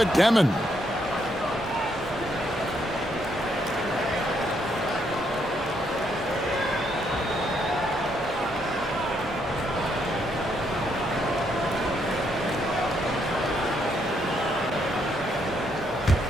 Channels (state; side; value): normal; both; correlation 0.74